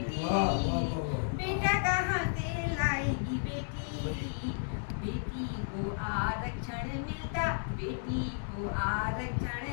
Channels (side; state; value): right; silent; digital silence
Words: बेटा कहाँ से लाएगी बेटी। बेटी को आरक्षण मिलता, बेटी को